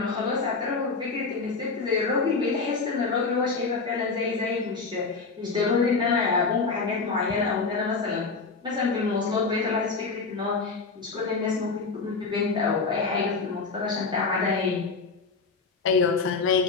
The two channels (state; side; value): quieter; right; 4.4 dB